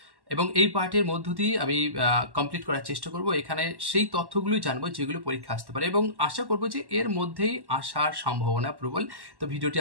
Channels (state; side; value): late; left; 1.1 ms